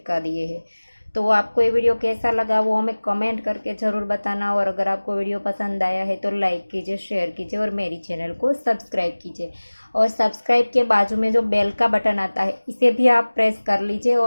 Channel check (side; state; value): both; inverted; correlation -1.00